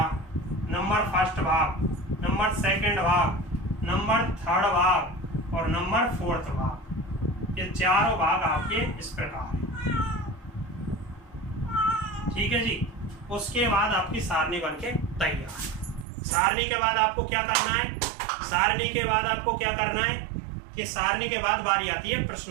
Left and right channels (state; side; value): drops out; left; at 16.1 s